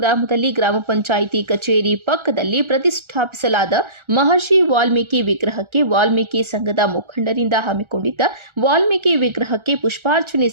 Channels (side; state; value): left; late; 1.4 ms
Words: ಗ್ರಾಮ ಪಂಚಾಯಿತಿ ಕಚೇರಿ ಪಕ್ಕದಲ್ಲಿ ಪ್ರತಿಷ್ಠಾಪಿಸಲಾದ ಮಹರ್ಷಿ ವಾಲ್ಮೀಕಿ ವಿಗ್ರಹಕ್ಕೆ ವಾಲ್ಮೀಕಿ ಸಂಘದ ಮುಖಂಡರಿಂದ ಹಮ್ಮಿಕೊಂಡಿದ್ದ ವಾಲ್ಮೀಕಿ ವಿಗ್ರಹಕ್ಕೆ ಪುಷ್ಪಾರ್ಚನೆ